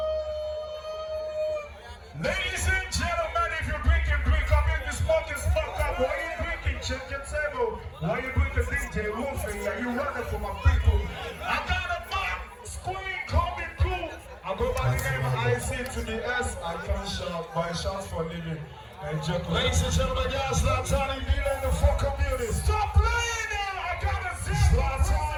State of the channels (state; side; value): identical; both; correlation 1.00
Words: Ladies and gentlemen, if you're drinking, drink up. If you're smoking, smoke up. Why you drinking? Check your table. Why you drinking DJ Wolfie? Are you running for my people? I got a mic screen coming through. I go by the name of IC to the S. I can't shout, buy shots for a living. And joke. Ladies and gentlemen, y'all Zlatan in the fucking building. Stop playing now! I gotta see Zlatan